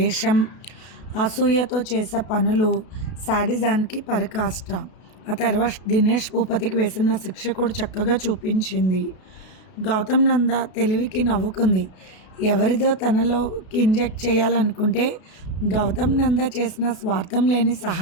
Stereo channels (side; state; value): right; late; 32 ms